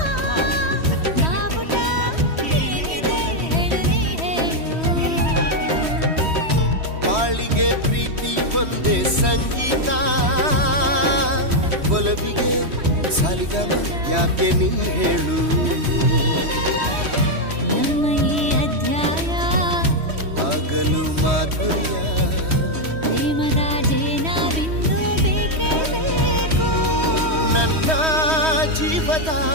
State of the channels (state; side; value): late; left; 3.1 ms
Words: ಬಾವುಟ ಏನಿದೆ ಹೇಳು ನೀ ಹೇಳು. ಬಾಳಿಗೆ ಪ್ರೀತಿ ಒಂದೇ ಸಂಗೀತ, ಒಲವಿಗೆ ಸರಿಗಮ ಯಾಕೆ ನೀ ಹೇಳು. ನಮ್ಮ ಈ ಅಧ್ಯಾಯ ಆಗಲು ಮಾಧುರ್ಯ, ಪ್ರೇಮದ ಜೇನ ಬಿಂದು ಬೇಕೇ ಬೇಕು. ನನ್ನ ಜೀವದ